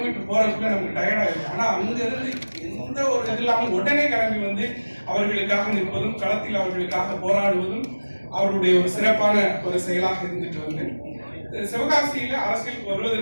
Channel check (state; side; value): inverted; both; correlation -1.00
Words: போறதுக்குள்ள நமக்கு டயர்ட் ஆயிடும். ஆனா அங்க இருந்து எந்த ஒரு இது இல்லாமல் உடனே கிளம்பி வந்து அவர்களுக்காக நிற்பதும், களத்தில் அவர்களுக்காக போராடுவதும் அவருடைய ஒரு சிறப்பான ஒரு செயலாக இருந்துட்டு வந்து சிவகாசியில அரசியலுக்கு